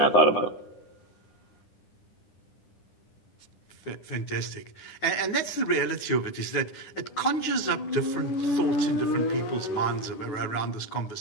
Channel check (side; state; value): right; late; 10 ms